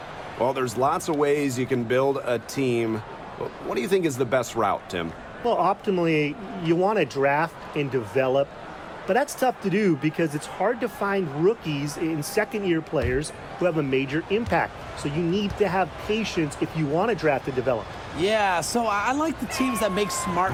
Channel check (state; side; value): identical; both; correlation 1.00